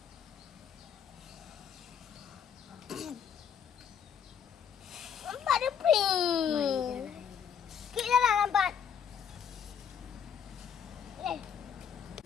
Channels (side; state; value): right; quieter; 7.7 dB